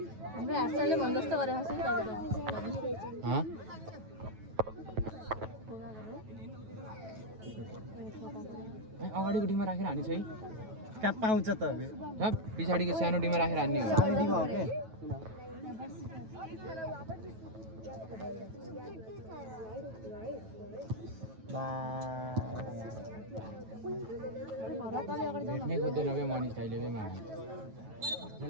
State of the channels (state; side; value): late; left; 9.3 ms